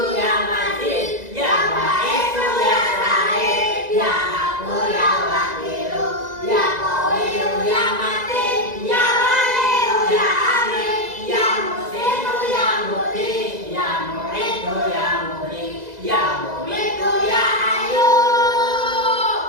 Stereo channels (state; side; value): late; left; 2.0 ms